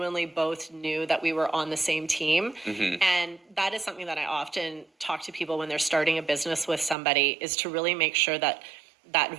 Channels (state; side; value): drops out; left; at 7.0 s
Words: both knew that we were on the same team. And that is something that I often talk to people when they're starting a business with somebody, is to really make sure that that